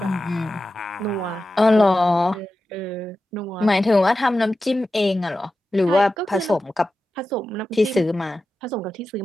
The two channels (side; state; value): both; normal; correlation 0.92